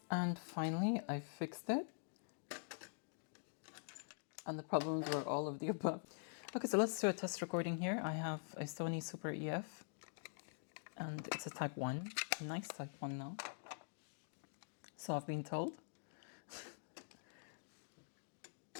and finally I fixed it. And the problems were all of the above. Okay, so let's do a test recording here. I have a Sony Super EF, and it's a Type 1, a nice Type 1 now. So I've been told.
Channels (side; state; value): right; silent; digital silence